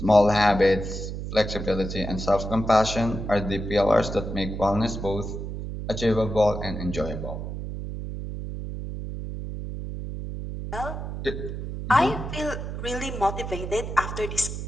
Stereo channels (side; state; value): right; noise; hum, 6 dB below the sound